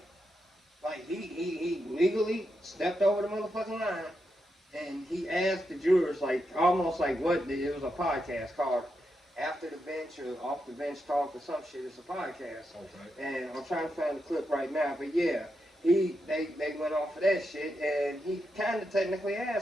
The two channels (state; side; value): normal; both; correlation 0.85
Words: he legally stepped over the motherfucking line, and he asked the jurors, like, almost like what, it was a podcast called After the Bench or Off the Bench Talk or some shit. It's a podcast. Okay. And I'm trying to find the clip right now, but yeah, they went off of that shit, and he kind of technically